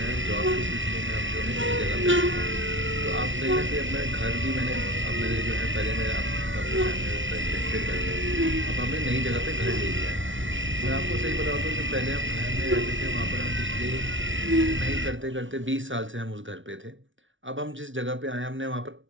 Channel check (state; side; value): late; left; 0.56 ms